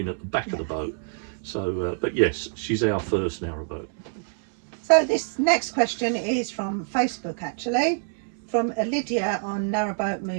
at the back of the boat. So, but yes, she's our first narrowboat. So this next question is from Facebook actually, from Lydia on Narrowboat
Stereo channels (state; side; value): silent; left; 61 dB below the other